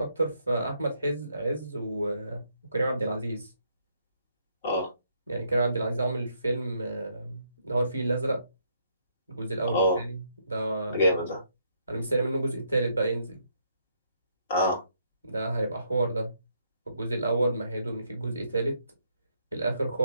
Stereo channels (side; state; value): both; inverted; correlation -0.74